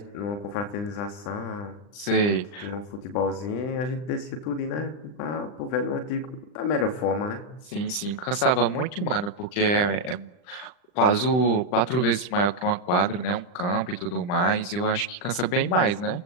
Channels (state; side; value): late; right; 39 ms